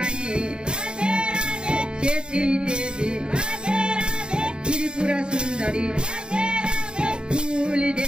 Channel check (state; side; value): late; left; 0.050 ms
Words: चेती देवी त्रिपुरा सुंदरी फूल